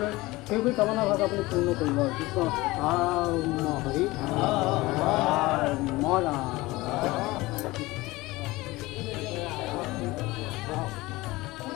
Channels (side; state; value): right; quieter; 20.4 dB